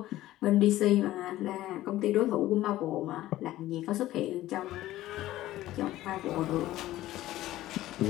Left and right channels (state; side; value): quieter; right; 15.3 dB